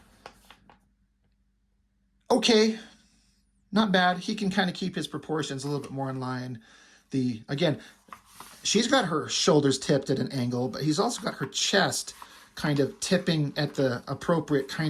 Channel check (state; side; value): identical; both; correlation 1.00